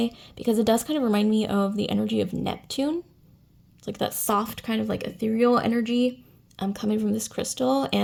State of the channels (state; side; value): identical; both; correlation 1.00